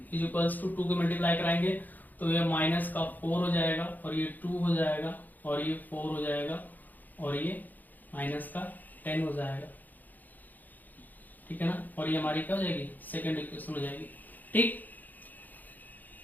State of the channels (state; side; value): late; right; 0.084 ms